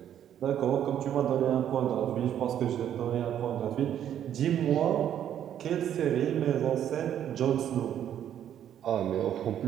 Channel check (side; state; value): left; quieter; 10.2 dB